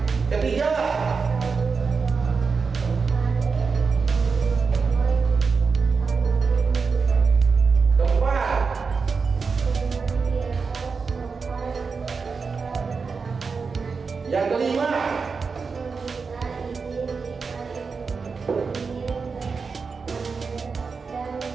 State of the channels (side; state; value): left; quieter; 5.0 dB